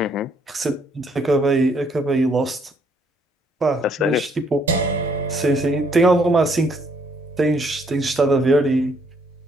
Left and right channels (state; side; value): normal; both; correlation 0.68